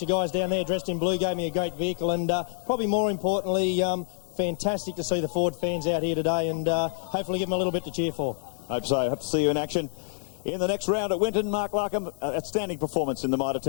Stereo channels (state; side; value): silent; right; digital silence